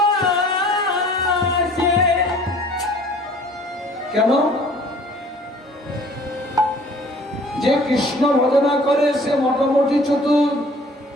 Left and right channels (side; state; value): both; normal; correlation 0.52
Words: কেন যে কৃষ্ণ ভজনা করে সে মোটামুটি চতুর